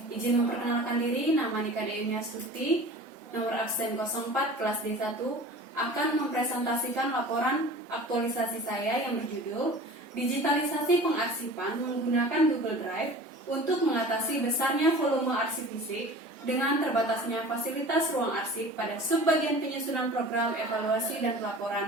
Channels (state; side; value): normal; both; correlation 0.41